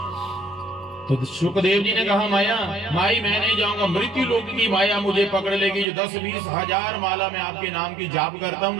तो सुखदेव जी ने कहा माया माई मैं नहीं जाऊंगा, मृत्यु लोक की माया मुझे पकड़ लेगी। जो 10-20 हजार माला मैं आपके नाम की जाप करता हूँ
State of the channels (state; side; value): drops out; left; at 5.9 s